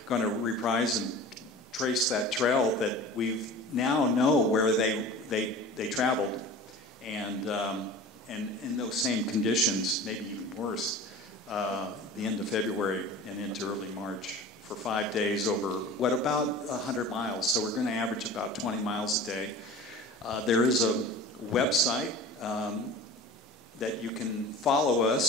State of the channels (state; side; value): normal; both; correlation 0.38